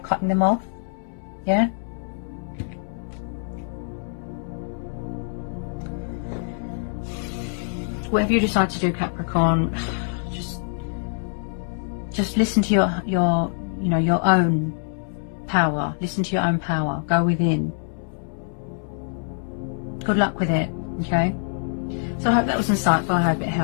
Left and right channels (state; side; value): silent; right; 62 dB below the other